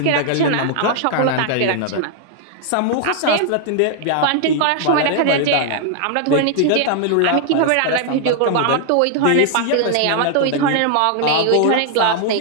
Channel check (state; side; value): different; both; correlation 0.00